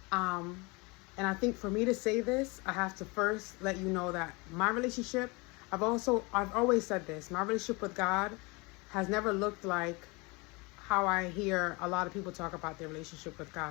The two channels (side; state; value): right; quieter; 26.9 dB